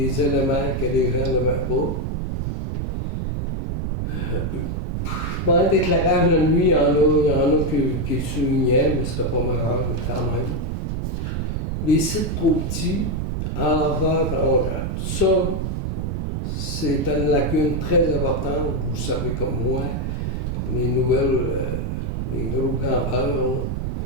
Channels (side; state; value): right; noise; rumble, 1 dB below the sound